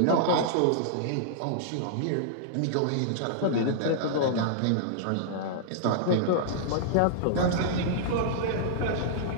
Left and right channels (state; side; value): different; both; correlation -0.02